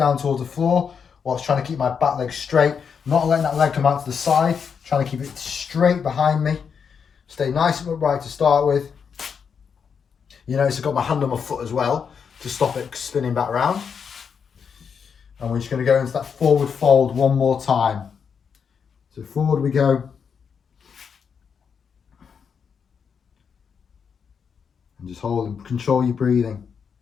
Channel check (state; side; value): quieter; right; 6.6 dB